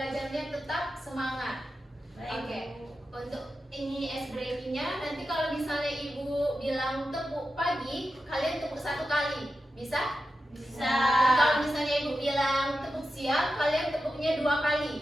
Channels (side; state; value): both; normal; correlation 0.91